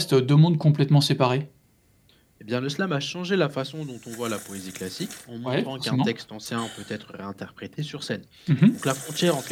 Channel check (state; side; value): identical; both; correlation 1.00